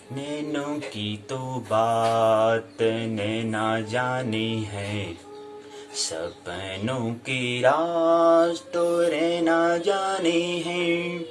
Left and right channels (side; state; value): both; identical; correlation 1.00